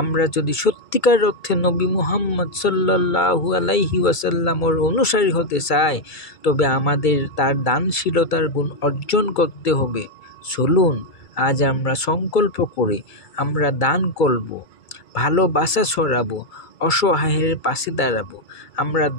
যদি সত্যিকার অর্থে নবী মুহাম্মদ সাল্লাল্লাহু আলাইহি ওয়াসাল্লামের অনুসারী হতে চাই, তবে আমাদের তার দানশীলতার গুণ অর্জন করতে হবে। চলুন আজ আমরা সংকল্প করি, আমরা দান করব, ভালোবাসা ছড়াবো, অসহায়ের পাশে দাঁড়াবো। আমরা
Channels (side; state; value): right; late; 2.3 ms